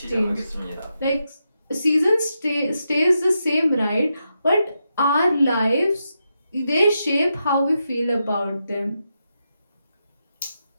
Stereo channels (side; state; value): both; inverted; correlation -0.85